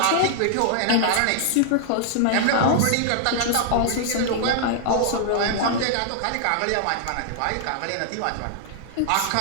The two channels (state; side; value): different; both; correlation -0.01